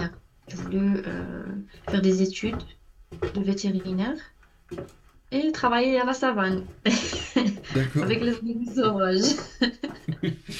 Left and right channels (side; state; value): both; identical; correlation 1.00